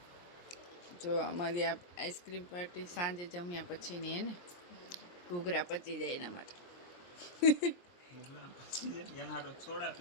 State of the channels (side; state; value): right; late; 23 ms